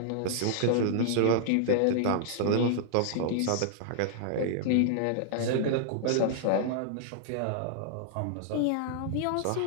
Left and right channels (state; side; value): different; both; correlation -0.01